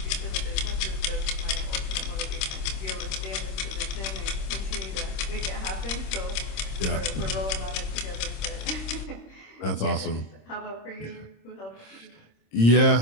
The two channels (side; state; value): right; late; 26 ms